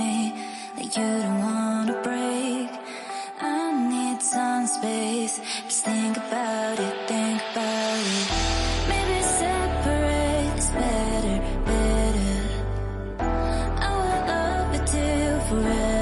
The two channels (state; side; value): identical; both; correlation 1.00